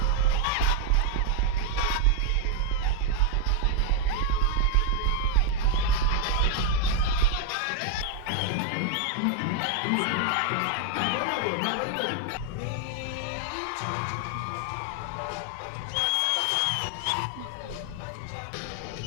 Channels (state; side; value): different; both; correlation 0.00